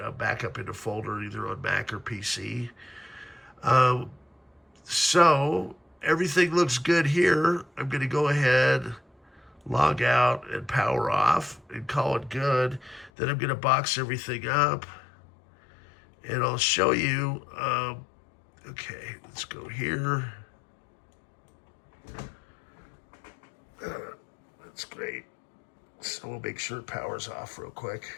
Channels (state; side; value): drops out; right; at 13.1 s